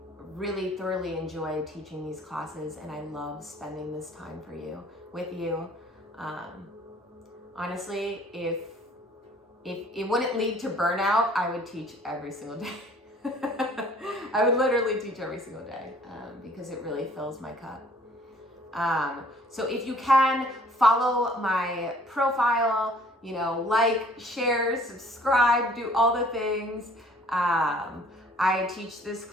really thoroughly enjoy teaching these classes, and I love spending this time with you. Honestly, if it wouldn't lead to burnout, I would teach every single day. I would literally teach every single day because it really fills my cup. So if you can, follow my profile, like, share, subscribe, do all the things. I teach this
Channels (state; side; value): normal; both; correlation 0.56